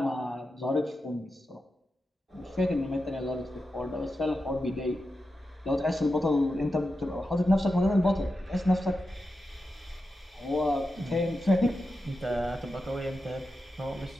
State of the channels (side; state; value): both; normal; correlation 0.89